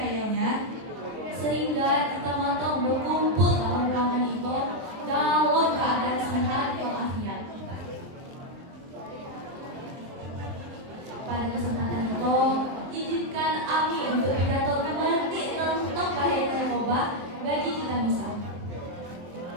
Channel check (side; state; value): left; late; 23 ms